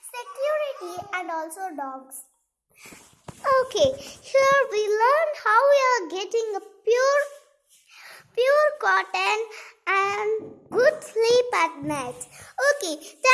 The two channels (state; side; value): identical; both; correlation 1.00